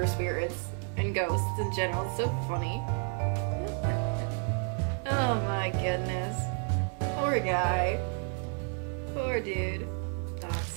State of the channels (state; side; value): quieter; left; 39.8 dB